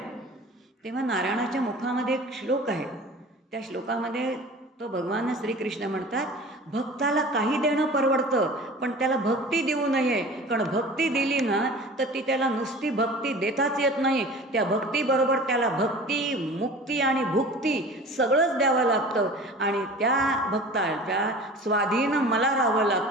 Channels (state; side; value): normal; both; correlation 0.40